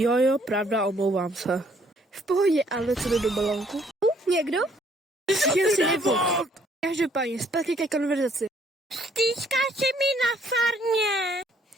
pravda, omlouvám se. V pohodě, ale co jde do balónku? Někdo? Já si nebudu. Každopádně, zpátky ke konverzaci. Stýskáš mi na farmě.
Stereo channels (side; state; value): both; normal; correlation 0.65